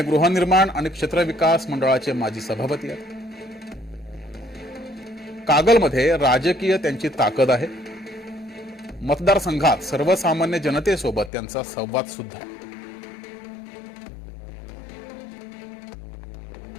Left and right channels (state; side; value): drops out; right; at 11.3 s